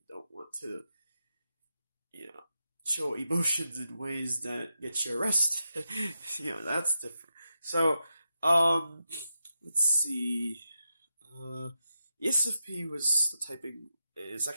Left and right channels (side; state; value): both; inverted; correlation -0.86